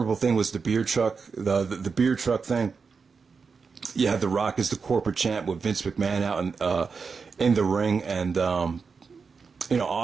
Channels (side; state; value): left; quieter; 5.2 dB